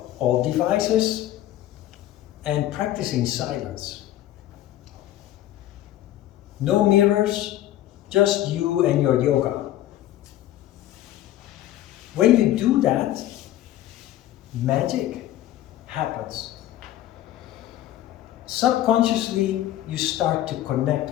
all devices and practice in silence. No mirrors, just you and your yoga. When you do that, magic happens. Subconsciously, you start to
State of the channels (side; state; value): right; quieter; 13.5 dB